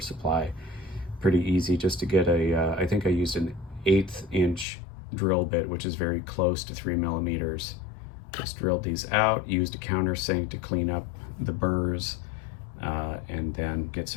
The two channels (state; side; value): drops out; right; at 4.7 s